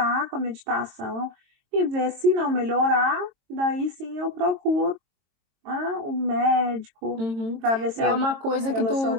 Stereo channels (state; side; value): late; left; 22 ms